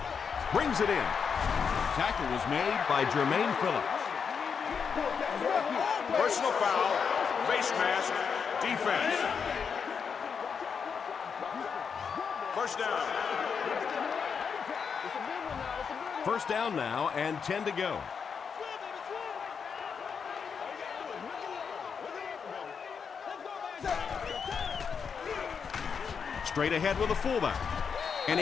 Brings it in. Tackle was made by Jermaine Phillips. Personal foul, face mask, defense. First down. First down now and 10 to go. Straight ahead with a fullback. And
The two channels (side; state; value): right; quieter; 6.3 dB